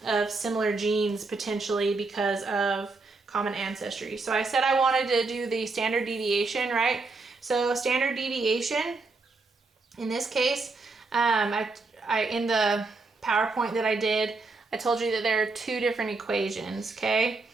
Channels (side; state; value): left; quieter; 3.8 dB